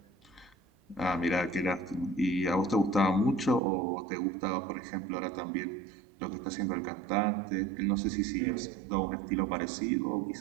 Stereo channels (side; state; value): left; drops out; at 3.6 s